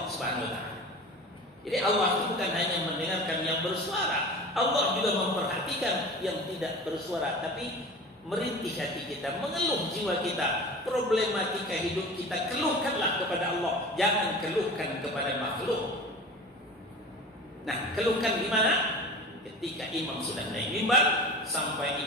Subhanahu wa taala. Jadi Allah itu bukan hanya mendengarkan yang bersuara, Allah juga memperhatikan yang tidak bersuara, tapi merintih hati kita, mengeluh jiwa kita, problematika hidup kita, keluhkanlah kepada Allah, jangan keluhkan kepada makhluk. Nah, keluhkan di mana? Ketika imam sudah naik mimbar sampai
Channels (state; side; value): normal; both; correlation 0.36